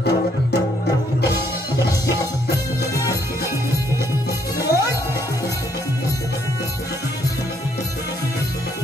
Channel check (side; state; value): both; normal; correlation 0.69